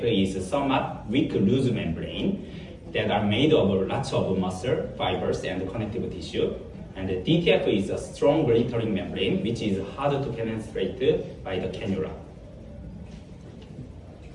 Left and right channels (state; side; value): identical; both; correlation 1.00